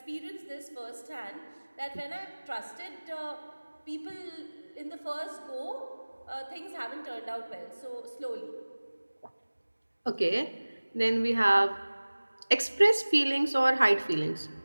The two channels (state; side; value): inverted; both; correlation -1.00